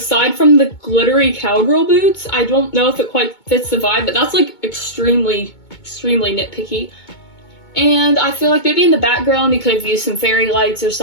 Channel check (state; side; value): late; right; 2.2 ms